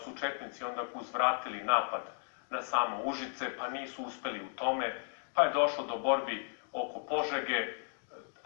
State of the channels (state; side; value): silent; right; digital silence